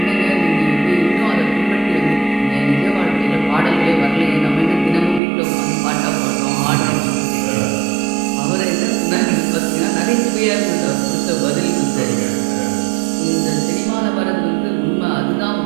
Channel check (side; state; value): left; drops out; at 5.2 s